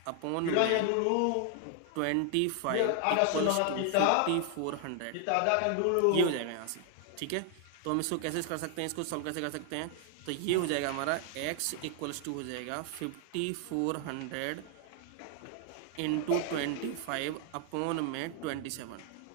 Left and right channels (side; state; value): both; different; correlation 0.00